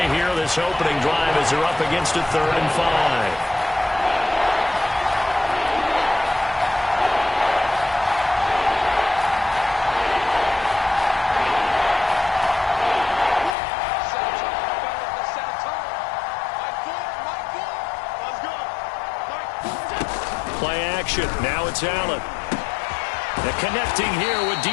here this opening drive as they're up against a 3rd and 5. Play action. Now it's Allen. And connecting here with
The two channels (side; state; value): right; drops out; at 13.6 s